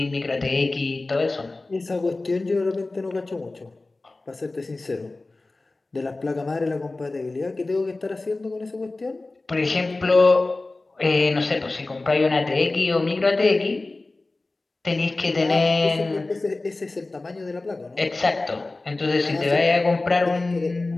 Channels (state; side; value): quieter; right; 3.2 dB